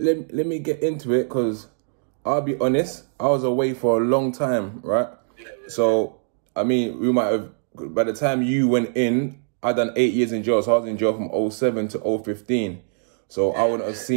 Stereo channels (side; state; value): left; silent; digital silence